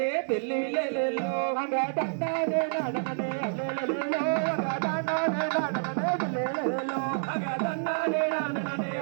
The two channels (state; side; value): silent; left; 59 dB below the other